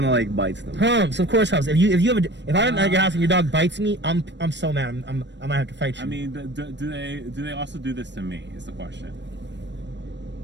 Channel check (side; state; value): left; late; 0.52 ms